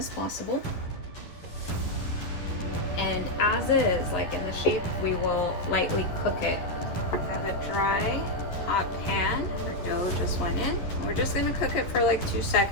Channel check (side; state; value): right; late; 11 ms